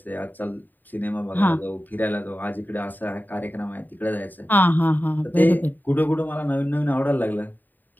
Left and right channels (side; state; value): right; late; 0.089 ms